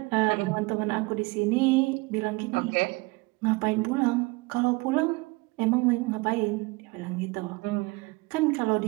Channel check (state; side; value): quieter; left; 25.1 dB